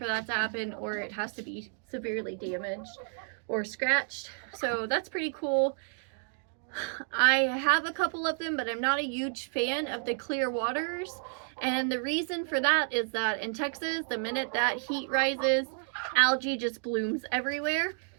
that to happen, or it has to be severely damaged or scratched. So that's pretty cool. I have a couple of them, but I'm not a huge fan of the clear waters. And the reason for that is that in Texas, the minute that heat rises, algae just blooms everywhere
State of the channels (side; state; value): left; silent; 57 dB below the other